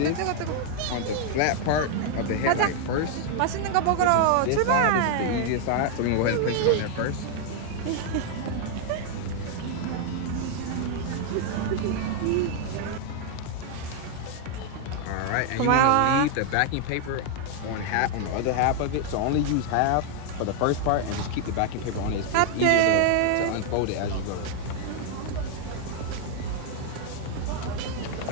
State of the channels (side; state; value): both; different; correlation 0.00